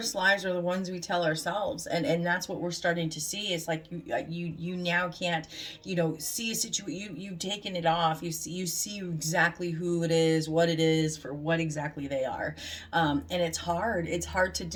lies are the ones we tell ourselves. And that's what we're starting to see. It's like you now can't, you know, see a situation, you've taken it off. You see exactly who it is, what it is, for what exactly they are. And it's hard to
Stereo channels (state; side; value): identical; both; correlation 1.00